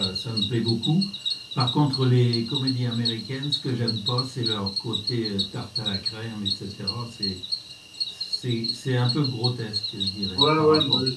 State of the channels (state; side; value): identical; both; correlation 1.00